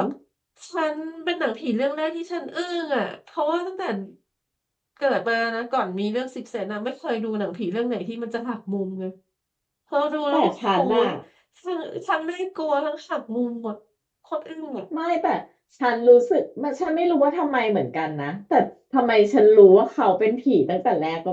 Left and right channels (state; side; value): identical; both; correlation 1.00